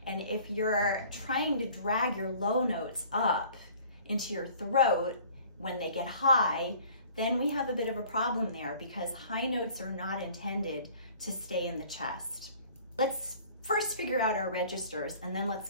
And if you're trying to drag your low notes up into your throat when they get high, then we have a bit of a problem there because high notes are not intended to stay in the chest. Let's first figure out our registers and then let's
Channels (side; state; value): both; inverted; correlation -0.51